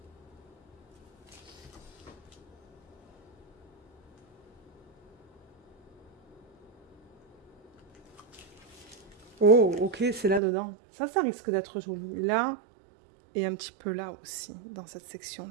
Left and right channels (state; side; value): drops out; left; at 10.4 s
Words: Oh, ok, c'est là-dedans. Ça risque d'être joli. Là, et un petit peu là aussi, dans cette